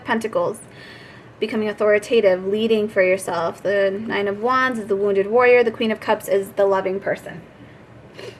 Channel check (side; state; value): both; identical; correlation 1.00